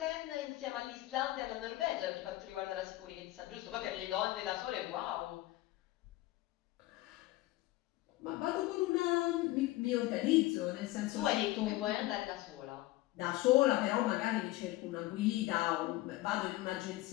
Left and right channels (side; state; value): right; quieter; 17.7 dB